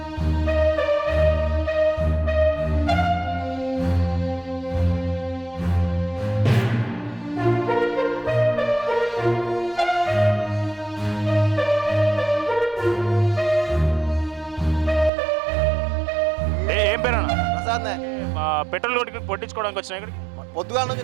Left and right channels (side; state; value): left; drops out; at 15.1 s